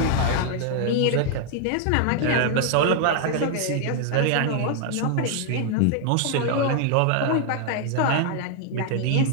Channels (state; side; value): different; both; correlation 0.00